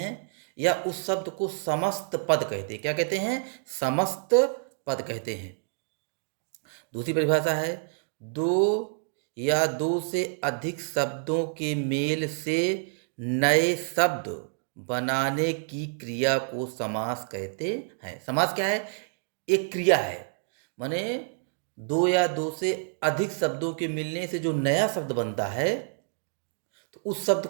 या उस शब्द को समस्त पद कहते हैं। क्या कहते हैं? समस्त पद कहते हैं। दूसरी परिभाषा है दो या दो से अधिक शब्दों के मेल से नए शब्द बनाने की क्रिया को समास कहते हैं। समास क्या है? एक क्रिया है। माने दो या दो से अधिक शब्दों के मिलने से जो नया शब्द बनता है, तो उस शब्द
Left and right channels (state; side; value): silent; left; digital silence